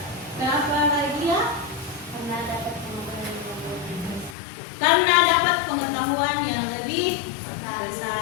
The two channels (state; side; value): drops out; right; at 4.4 s